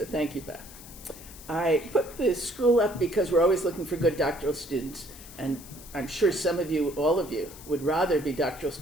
thank you, Beth. I put the school up because we're always looking for good doctoral students, and I'm sure some of you, all of you, would rather be doctoral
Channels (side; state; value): left; noise; hiss, 17 dB below the sound